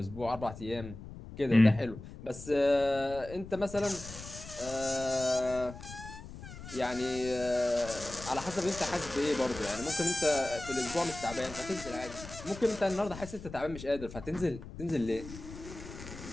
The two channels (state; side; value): noise; left; rumble, 13 dB below the sound